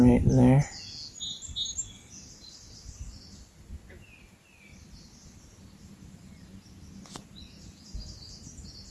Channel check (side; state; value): both; identical; correlation 1.00